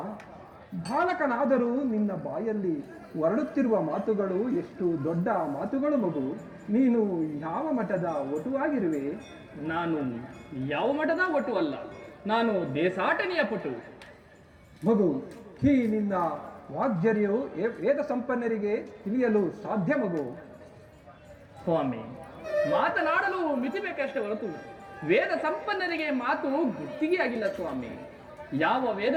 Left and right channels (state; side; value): identical; both; correlation 1.00